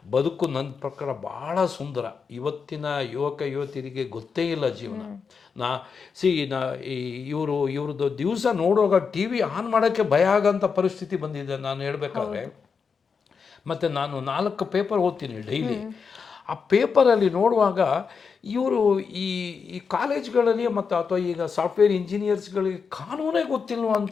ಬದುಕು ನನ್ನ ಪ್ರಕಾರ ಭಾಳ ಸುಂದರ. ಇವತ್ತಿನ ಯುವತಿಯರಿಗೆ ಗೊತ್ತೇ ಇಲ್ಲ ಜೀವನ. ಇವ್ರದ್ದು ದಿವಸ ನೋಡುವಾಗ TV ಆನ್ ಮಾಡೋಕ್ಕೆ ಭಯ ಆಗೋಂಥ ಪರಿಸ್ಥಿತಿ ಬಂದಿದೆ ನಾನು ಹೇಳಬೇಕಾದ್ರೆ. ಮತ್ತು ನಾನು 4 ಪೇಪರ್ ಓದ್ತೀನಿ ಡೈಲಿ. ಆ ಪೇಪರಲ್ಲಿ ನೋಡುವಾಗ ಇವರು ಈ ಕಾಲೇಜ್ಗಳಲ್ಲಿ ಮತ್ತು ಅಥವಾ ಈಗ ಸಾಫ್ಟ್ವೇರ್ ಇಂಜಿನಿಯರ್ಸ್ಗಳಿಗೆ ಕಾನೂನೇ ಗೊತ್ತಿಲ್ವ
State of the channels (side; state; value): right; quieter; 5.7 dB